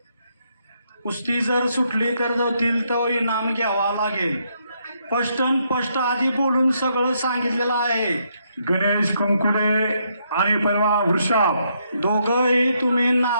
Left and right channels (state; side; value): inverted; both; correlation -0.76